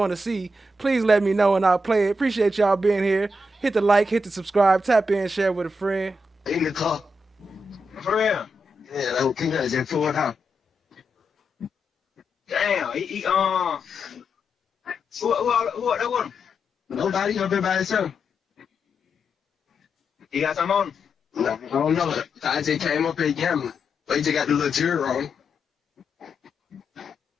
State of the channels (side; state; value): both; normal; correlation 0.84